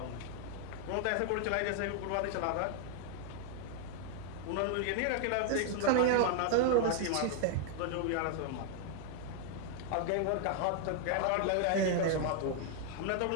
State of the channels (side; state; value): both; different; correlation 0.00